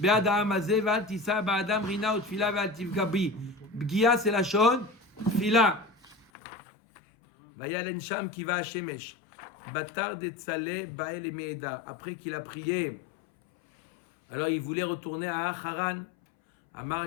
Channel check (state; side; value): drops out; right; at 6.2 s